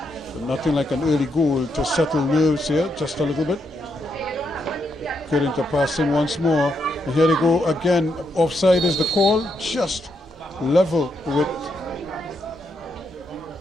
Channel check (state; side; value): normal; both; correlation 0.80